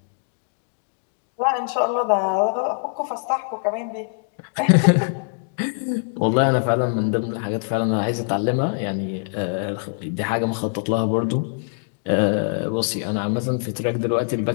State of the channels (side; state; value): right; silent; digital silence